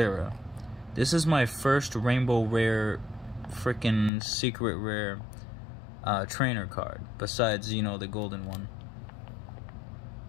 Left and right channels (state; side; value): drops out; right; at 4.1 s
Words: This is my first rainbow rare freaking secret rare trainer card, besides, you know, the golden one.